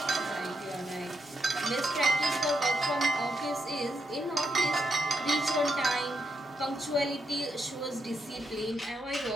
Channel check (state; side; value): normal; both; correlation 0.81